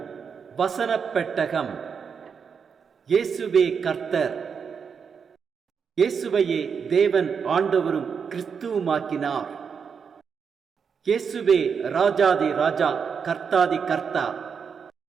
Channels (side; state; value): left; quieter; 6.4 dB